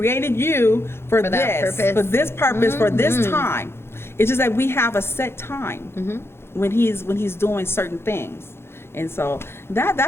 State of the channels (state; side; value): late; right; 0.12 ms